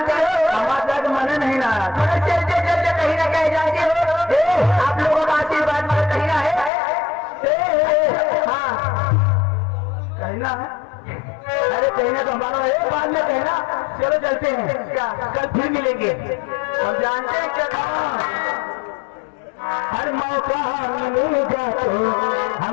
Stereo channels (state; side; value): drops out; right; at 6.7 s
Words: हो हमारा मन नहीं ना मगर चलते चलते कहीं ना कहीं जाते हो आप लोगों का आशीर्वाद मगर कहीं ना है हाँ कहीं ना है अरे कहना तो हमारा है बाद में कहना चलो चलते हैं क्या कल फिर मिलेंगे हम जानते हैं क्या हर मौका मिलेगा तो